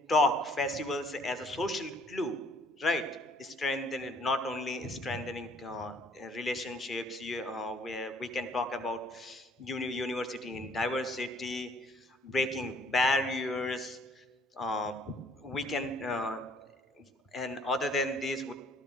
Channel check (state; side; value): normal; both; correlation 0.59